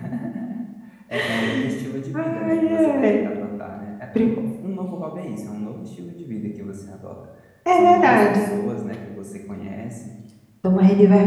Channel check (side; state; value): both; identical; correlation 1.00